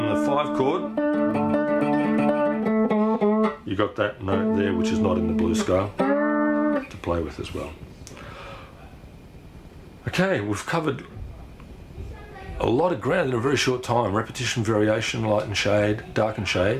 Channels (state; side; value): identical; both; correlation 1.00